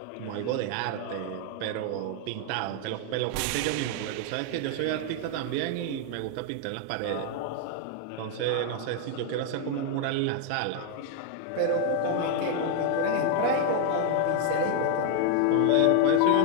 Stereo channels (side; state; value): both; different; correlation 0.00